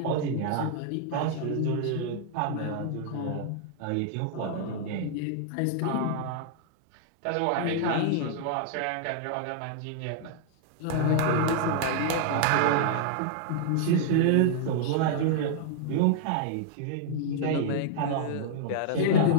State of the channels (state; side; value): different; both; correlation -0.01